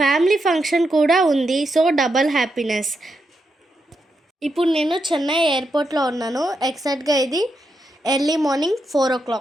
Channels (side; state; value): both; normal; correlation 0.84